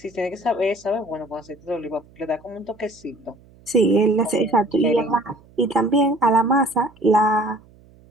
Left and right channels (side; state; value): right; noise; hum, 27 dB below the sound